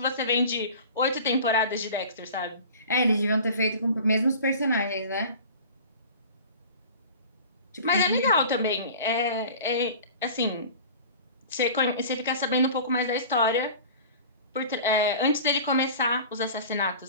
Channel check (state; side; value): inverted; both; correlation -0.40